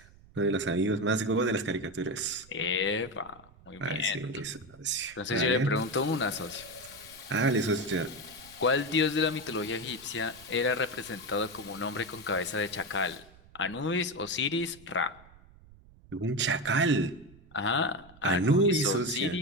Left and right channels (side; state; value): right; noise; rumble, 24 dB below the sound